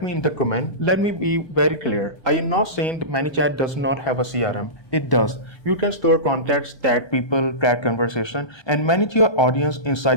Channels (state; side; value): late; right; 1.2 ms